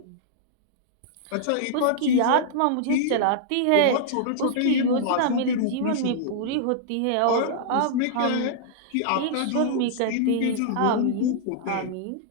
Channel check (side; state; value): both; different; correlation -0.01